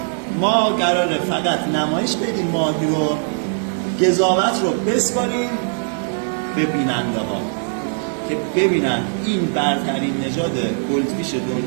ما قراره فقط نمایش بدیم ماهی رو، قضاوت رو بسپاریم به بیننده ها که ببینن این برترین نژاد گلدفیش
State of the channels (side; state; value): left; silent; digital silence